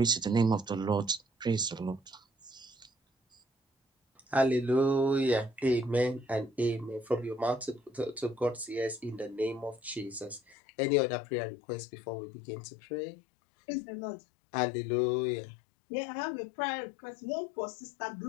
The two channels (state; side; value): drops out; right; at 10.6 s